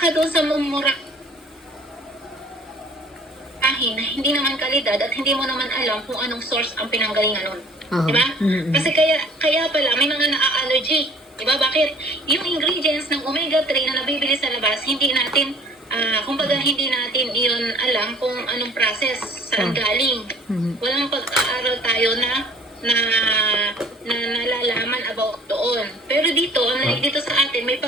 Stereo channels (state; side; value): normal; both; correlation 0.54